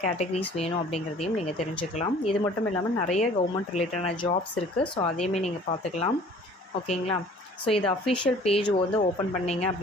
கேட்டகரிஸ் வேணும் அப்படிங்கிறதையும் நீங்கள் தெரிஞ்சுக்கலாம். இது மட்டும் இல்லாமல் நிறைய கவர்மெண்ட் ரிலேட்டடான ஜாப்ஸ் இருக்குது. ஸோ அதையுமே நீங்கள் பார்த்துக்கலாம். ஓகேங்களா? ஸோ இது அஃபிஷியல் பேஜ் வந்து ஓப்பன் பண்ணிங்க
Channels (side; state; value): both; normal; correlation 0.51